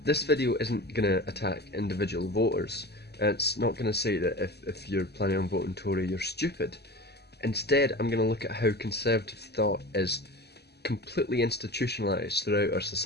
This video isn't going to attack individual voters. It's not going to say that if you're planning on voting Tory you're stupid. Instead, I'm going to look at how conservative thought is completely institutionalised throughout our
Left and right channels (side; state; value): right; late; 0.48 ms